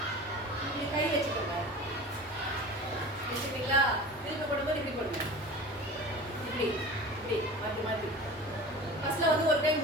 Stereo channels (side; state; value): both; normal; correlation 0.36